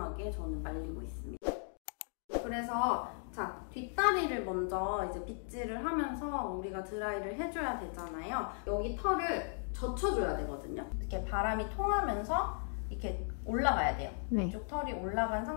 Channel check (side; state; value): right; silent; 53 dB below the other